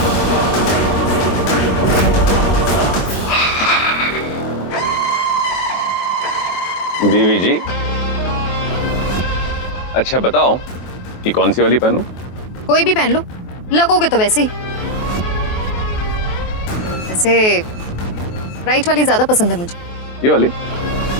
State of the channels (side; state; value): right; late; 23 ms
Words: बीवी जी, अच्छा बताओ कि कौन सी वाली पहनूं? कोई भी पहन लो, लगोगे तो वैसे ही। वैसे राइट वाली ज्यादा पसंद है मुझे। ये वाली?